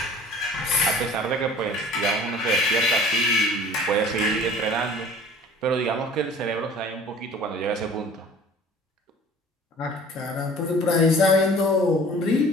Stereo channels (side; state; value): both; normal; correlation 0.47